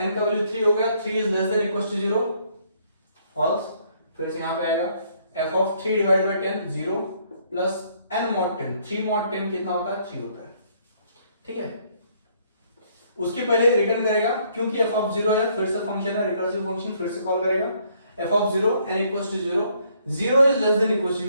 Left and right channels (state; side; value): inverted; both; correlation -0.67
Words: का वैल्यू 3 हो गया, 3 is less than equal to 0, false, फिर से यहाँ पे आएगा f of 3 divide by 10 0 plus n mod 10, 3 mod 10 कितना होता है 3 होता है, ठीक है। उसके पहले रिटर्न करेगा, क्योंकि f ऑफ 0 है, फिर से फंक्शन है रिकर्सिव फंक्शन, फिर से कॉल करेगा, f of 0 n equals to 0, 0 is less than equals to